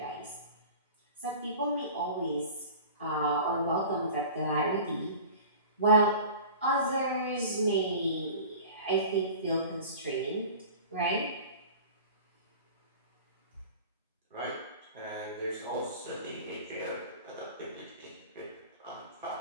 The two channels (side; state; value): both; inverted; correlation -0.39